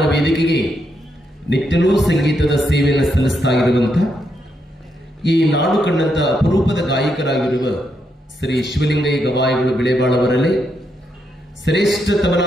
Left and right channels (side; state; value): both; normal; correlation 0.80